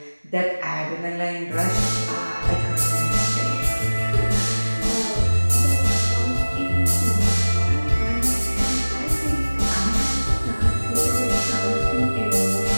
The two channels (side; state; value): both; inverted; correlation -1.00